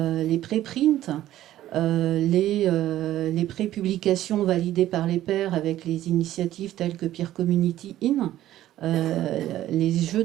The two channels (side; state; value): left; quieter; 13.6 dB